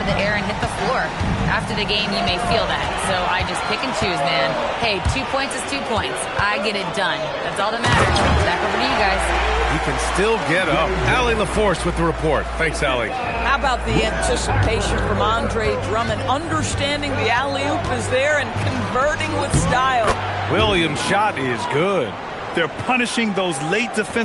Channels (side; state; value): both; identical; correlation 1.00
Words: of the air and hit the floor. After the game, you may feel that, so I just pick and choose, man. Hey, 2 points is 2 points. I get it done. That's all that matters. Back over to you guys. He can still get up. Allie LaForce with the report. Thanks, Allie. How about the anticipation from Andre Drummond, understanding the alley-oop is there and converting with style. Williams' shot is good. They're punishing those late